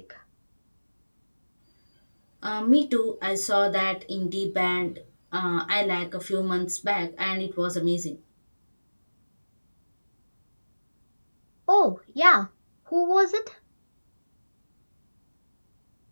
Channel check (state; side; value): inverted; both; correlation -1.00